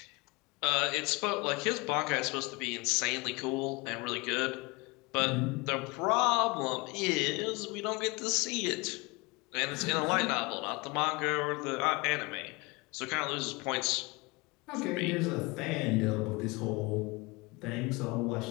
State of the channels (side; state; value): right; quieter; 25.9 dB